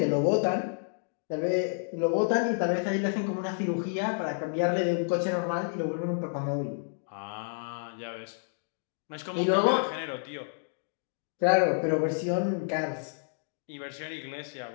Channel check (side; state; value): right; silent; digital silence